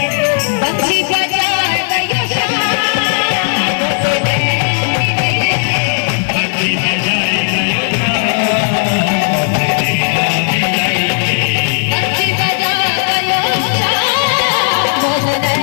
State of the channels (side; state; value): right; silent; digital silence